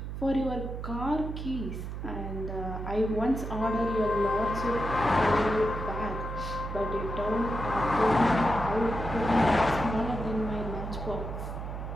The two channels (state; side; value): noise; right; hum, 6 dB below the sound